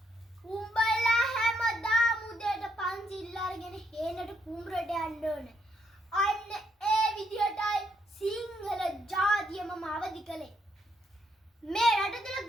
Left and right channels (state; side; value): normal; both; correlation 0.76